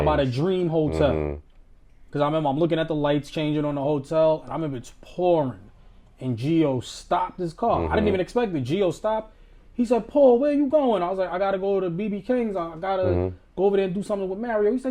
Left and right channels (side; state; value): both; identical; correlation 1.00